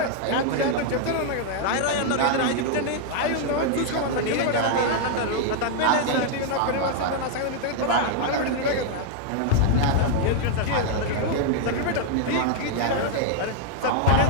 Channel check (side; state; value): both; different; correlation 0.00